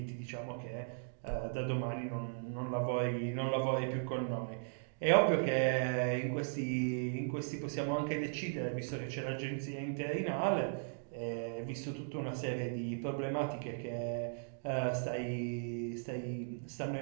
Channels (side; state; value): left; silent; digital silence